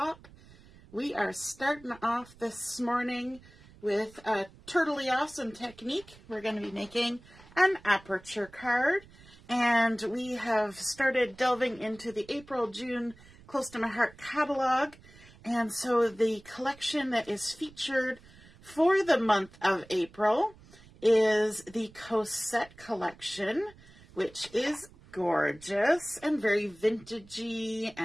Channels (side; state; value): right; noise; rumble, 23 dB below the sound